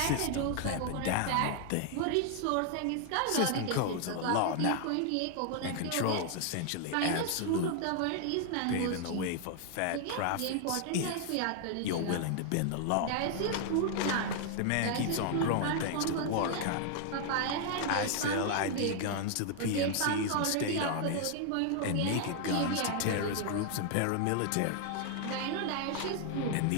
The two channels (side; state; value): both; different; correlation 0.00